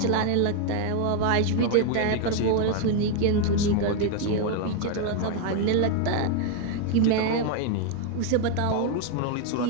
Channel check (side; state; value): both; different; correlation 0.01